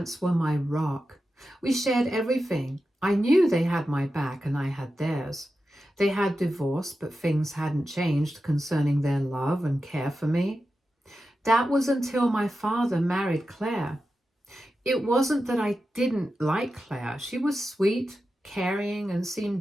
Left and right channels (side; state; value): both; normal; correlation 0.91